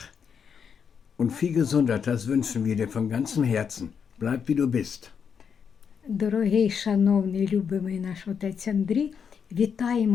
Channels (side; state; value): right; quieter; 6.9 dB